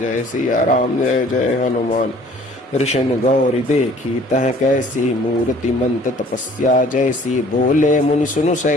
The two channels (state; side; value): normal; both; correlation 0.54